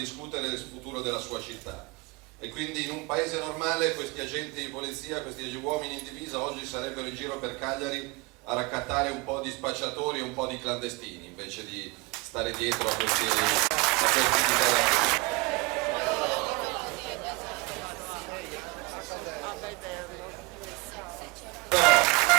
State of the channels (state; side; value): quieter; left; 25.6 dB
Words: del futuro della sua città. E quindi in un paese normale questi agenti di polizia, questi uomini in divisa oggi sarebbero in giro per Cagliari a raccattare un po' di spacciatori e un po' di clandestini invece di stare dietro a questi dichiarazioni.